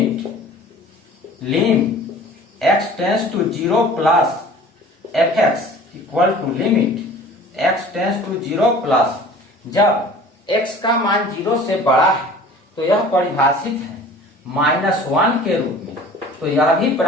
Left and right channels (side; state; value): both; normal; correlation 0.45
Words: x tends to 0 plus fx equal to x tends to 0 plus, जब x का मान 0 से बड़ा है तो यह परिभाषित है -1 के रूप में, तो यह भी